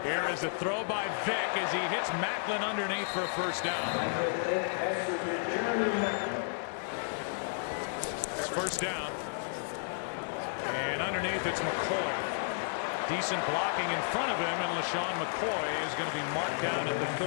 Here is a throw by Vic as he hits Macklin underneath for a first down. It's first down. And underneath it's McCoy. Decent blocking in front of him, and LaShawn McCoy is going to be marked down at the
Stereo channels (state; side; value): silent; right; digital silence